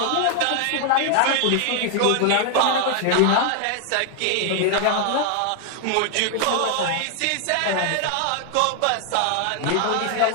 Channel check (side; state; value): both; different; correlation 0.00